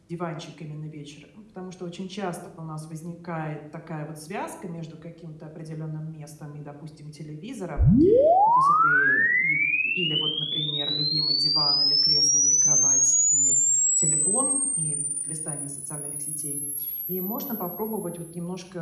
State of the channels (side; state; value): both; identical; correlation 1.00